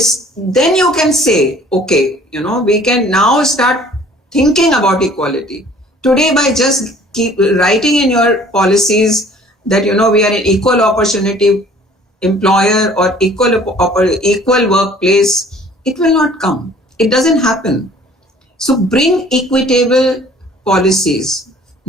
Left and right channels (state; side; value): normal; both; correlation 0.53